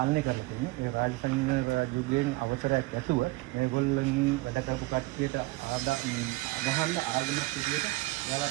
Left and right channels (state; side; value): quieter; left; 21.5 dB